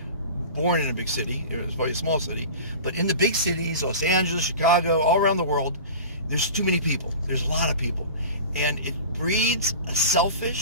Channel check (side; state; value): both; inverted; correlation -0.35